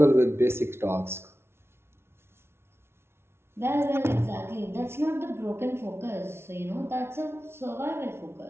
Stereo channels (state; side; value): late; left; 0.12 ms